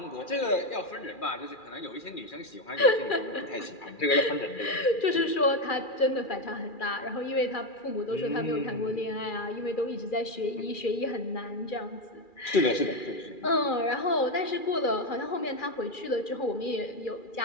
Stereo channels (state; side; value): late; right; 2.4 ms